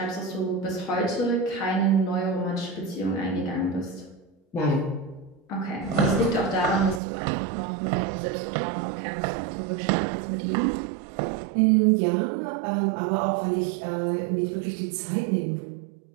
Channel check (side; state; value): left; drops out; at 7.0 s